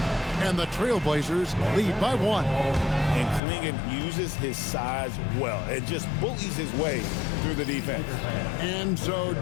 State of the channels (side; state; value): right; drops out; at 3.4 s